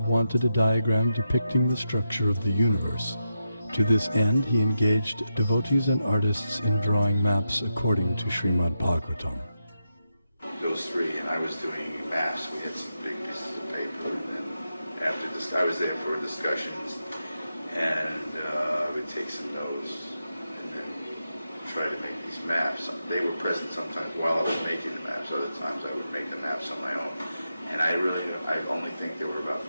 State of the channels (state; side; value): inverted; both; correlation -0.87